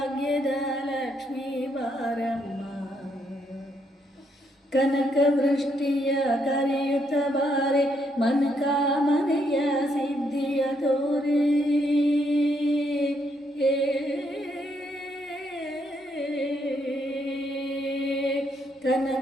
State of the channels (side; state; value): both; normal; correlation 0.75